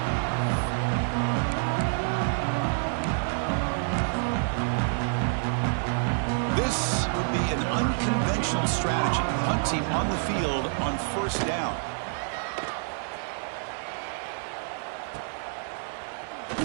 This would be an unconventional strategy. Punt team on the field on 1st down.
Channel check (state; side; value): silent; left; 55 dB below the other